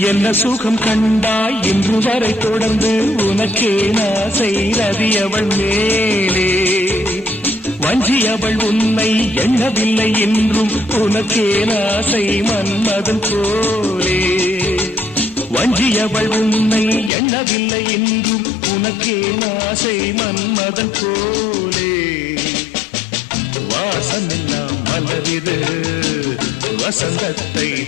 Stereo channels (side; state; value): right; drops out; at 17.1 s